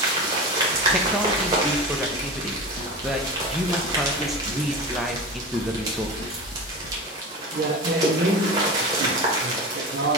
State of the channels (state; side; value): normal; both; correlation 0.28